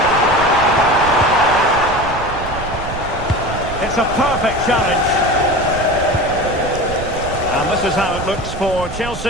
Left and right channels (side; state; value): right; noise; rumble, 10 dB below the sound